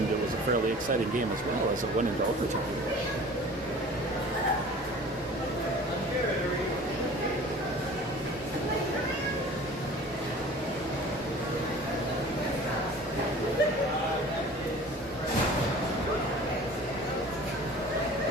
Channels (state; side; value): normal; both; correlation 0.44